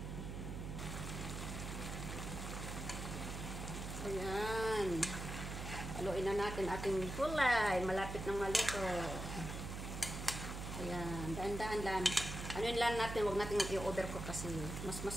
Ayan. Haluin na natin ating gulay. Malapit ng maluto. Ayan. Daan-daan lang. Anuin lang natin, huwag natin i-overcook kasi mas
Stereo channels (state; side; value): noise; right; hum, 6 dB below the sound